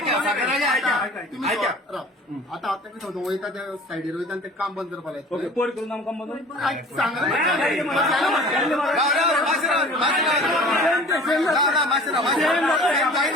आता वयता त्या सायडीर वयता ते काम बंद करपा लायता पोर करून आमकां काम बंद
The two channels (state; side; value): normal; both; correlation 0.44